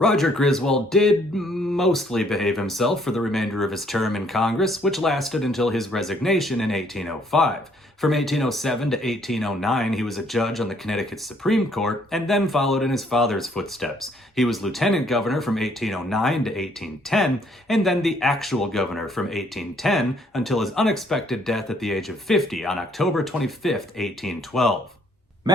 Griswold did mostly behave himself for the remainder of his term in Congress, which lasted until his resignation in 1805. From 1807 to 1809, he was a judge on the Connecticut Supreme Court, and then followed in his father's footsteps. He was lieutenant governor from 1809 to 1810, and then the actual governor from 1810 until his unexpected death at the age of 50 on October 25th, 1812.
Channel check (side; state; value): both; normal; correlation 0.65